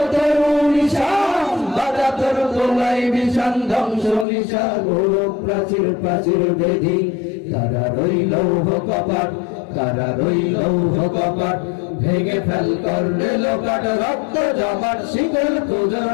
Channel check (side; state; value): right; drops out; at 4.2 s